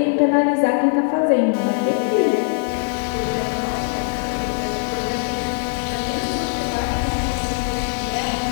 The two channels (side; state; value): right; silent; digital silence